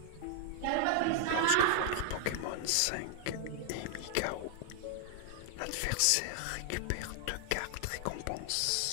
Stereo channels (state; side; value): different; both; correlation 0.00